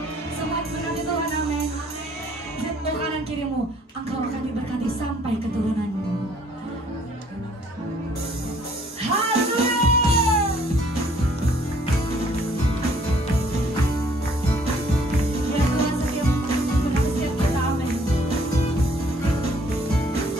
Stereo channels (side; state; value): both; normal; correlation 0.61